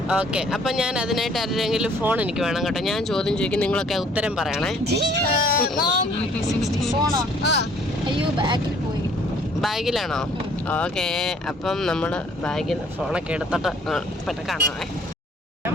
ഓക്കെ. അപ്പൊ ഞാൻ അതിനായിട്ട് ആരെങ്കിലും ഫോൺ എനിക്ക് വേണം കേട്ടോ. ഞാൻ ചോദ്യം ചോദിക്കും, നിങ്ങളൊക്കെ ഉത്തരം പറയണേ. ബാഗിലാണോ? ഓക്കെ. അപ്പം നമ്മള് ബാഗിൽ ഫോണൊക്കെ എടുത്തിട്ട് പെട്ടെന്ന് കാണാമേ.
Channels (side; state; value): both; normal; correlation 0.59